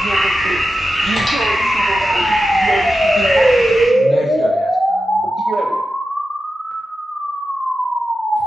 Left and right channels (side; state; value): both; normal; correlation 0.91